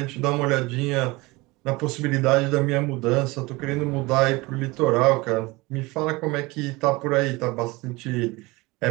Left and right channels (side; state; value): left; quieter; 23.0 dB